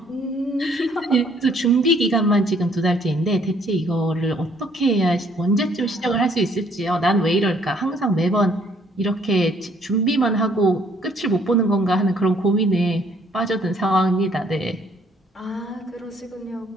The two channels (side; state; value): both; normal; correlation 0.64